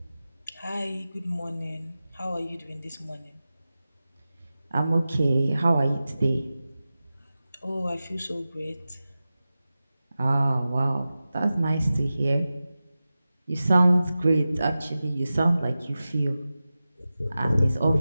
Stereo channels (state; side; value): inverted; both; correlation -0.95